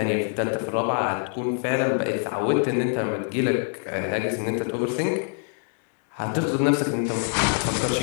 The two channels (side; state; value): right; silent; 57 dB below the other